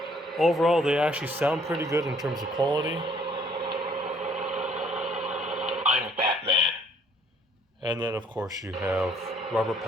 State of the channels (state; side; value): normal; both; correlation 0.62